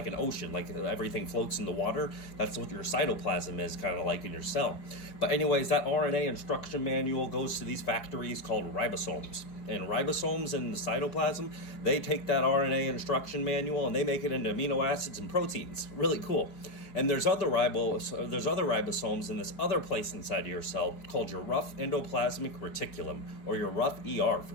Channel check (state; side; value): late; right; 4.8 ms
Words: ocean, like everything floats in the water. That's what your cytoplasm is kind of like in your cell. But anyways, that RNA instruction manual goes to these factories called ribosomes. And ribosomes in the cytoplasm, they take that RNA instruction manual and they make it into amino acids and proteins. Really cool. And there's other ribosomes in this other place inside of your cell called your rough endoplasmic reticulum, or your rough ER